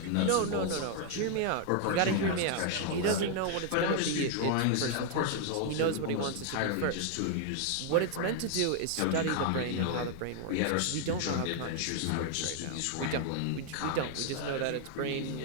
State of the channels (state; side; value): different; both; correlation 0.00